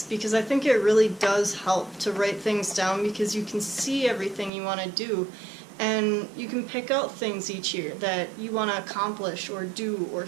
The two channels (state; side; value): drops out; left; at 4.5 s